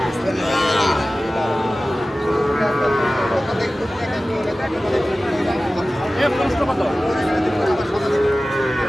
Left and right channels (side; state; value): both; normal; correlation 0.96